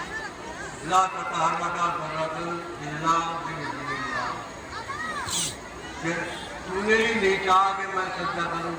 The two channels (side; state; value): both; identical; correlation 1.00